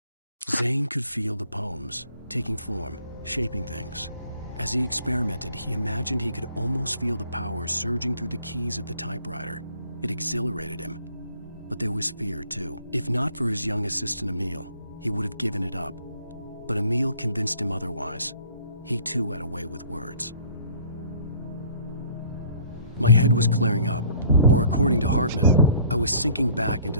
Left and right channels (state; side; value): inverted; both; correlation -0.54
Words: Zane could feel the poems, taking form, shaping things. As he experimented, he imagined he could almost feel the power surging through the keys of the typewriter. It exhilarated him. But there was fear, too. If not for his young assistant Emil, he would have given it up. But Emil convinced him otherwise. He too had a way with words. My head was clearing up, or according to Hartman, I was sinking back into